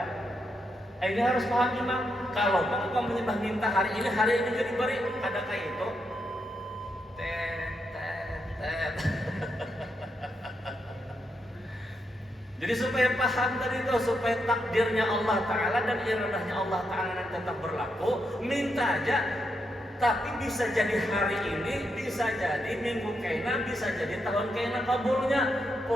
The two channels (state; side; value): normal; both; correlation 0.82